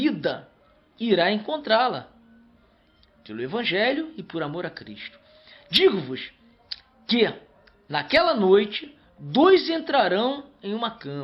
irá encontrá-la. Pelo Evangelho e por amor a Cristo. Digo-vos que, naquela noite, 2 entrarão em uma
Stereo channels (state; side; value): identical; both; correlation 1.00